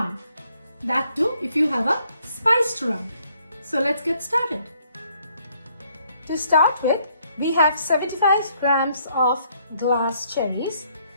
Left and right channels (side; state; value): both; inverted; correlation -0.68